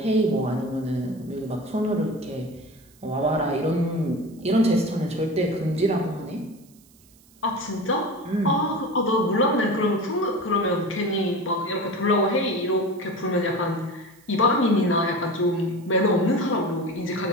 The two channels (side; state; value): right; noise; hiss, 29 dB below the sound